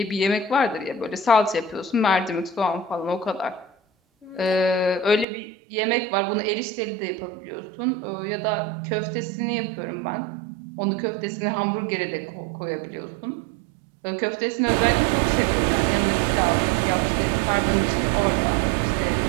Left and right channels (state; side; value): drops out; left; at 5.2 s